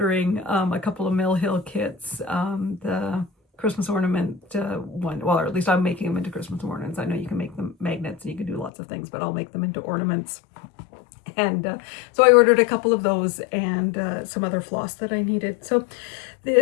a couple of Mill Hill kits, the Christmas ornament one, well, or at least I'm making them into Christmas ornaments. I know you can make them magnets and you can do lots of things, but I'll make them into ornaments. And so I ordered a couple of those and some other floss that I needed. So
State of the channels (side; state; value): right; drops out; at 8.7 s